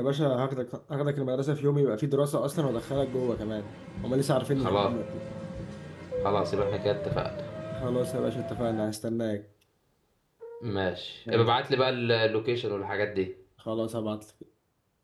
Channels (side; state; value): both; identical; correlation 1.00